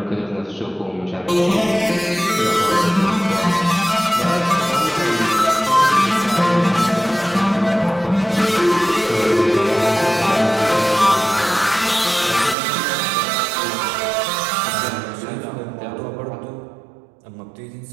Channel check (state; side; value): drops out; left; at 12.6 s